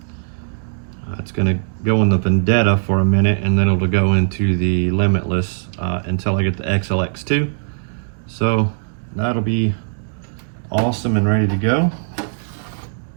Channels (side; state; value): left; silent; digital silence